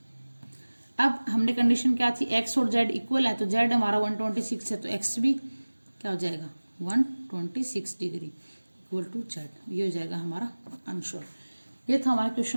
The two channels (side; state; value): both; inverted; correlation -1.00